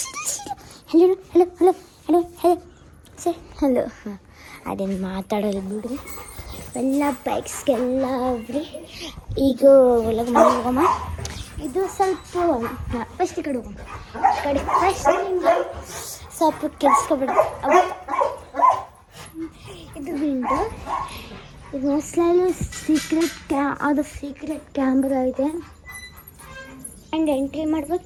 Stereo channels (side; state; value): both; identical; correlation 1.00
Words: Hello hello hello hello hello sir hello. ಅದೇನು ಮಾತಾಡೋದು ಬಿಡ್ರಿ, ಎಲ್ಲ ಬೈಕ್ಸ್ಗೆಲ್ಲ ಹೋಗ್ರಿ. ಈಗ ಒಳಗೆ ಮನೆ ಹೋಗಮ್ಮ. ಇದು ಸ್ವಲ್ಪ ಫಸ್ಟ್ ಈ ಕಡೆ ಹೋಗಮ್ಮ. ಕಡೆ ಫಸ್ಟ್ ಸ್ವಲ್ಪ ಕೆಲ್ಸ್ಕೊಬೇಡ. ಇದು ವಿಂಡೋ, ಇದು ಮೋಸ್ಟ್ಲಿ ಸೀಕ್ರೆಟ್ ಕ್ಯಾಮ್ರಾ ಇದೆ. ಆ್ಯಂಡ್ ಎಂಟ್ರಿ